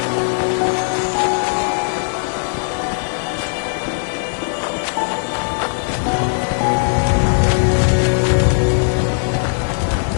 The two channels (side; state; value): right; silent; digital silence